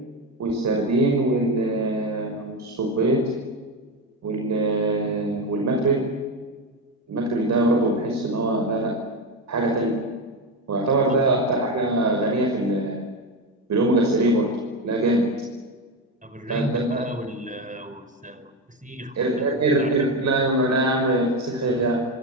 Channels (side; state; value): both; normal; correlation 0.14